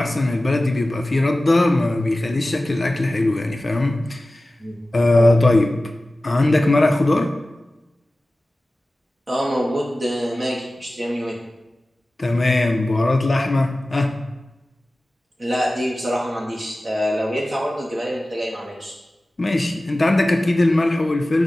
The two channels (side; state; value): both; normal; correlation 0.96